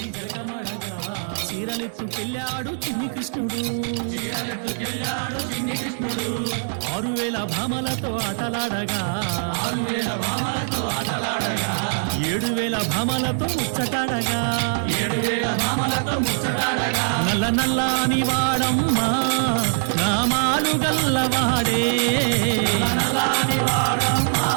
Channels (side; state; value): left; silent; digital silence